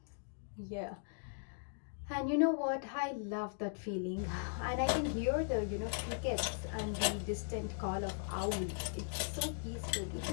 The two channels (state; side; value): silent; right; digital silence